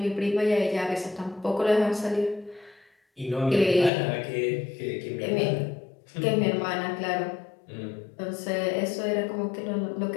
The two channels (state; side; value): drops out; right; at 3.9 s